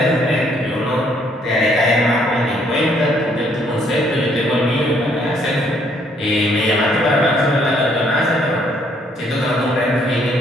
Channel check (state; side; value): normal; both; correlation 0.67